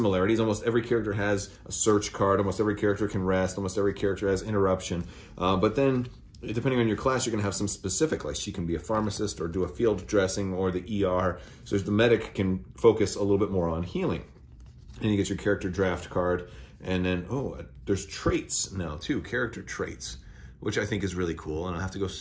Almost every character has a search card. Almost every character can rest. Almost every character has interruption. But then, depending on your class, you're going to have some specific, like she can be a pharmacist or do a field dressing or the ER. So the medic can focus a little bit more on healing. And you get your character draft card. And then, oh, there's traits now too, character traits, which I think is really cool. And I'll have to go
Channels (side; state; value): both; identical; correlation 1.00